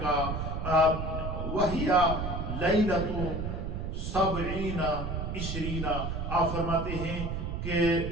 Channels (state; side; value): noise; right; rumble, 3 dB below the sound